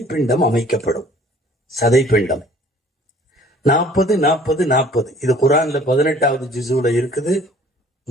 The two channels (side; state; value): both; normal; correlation 0.53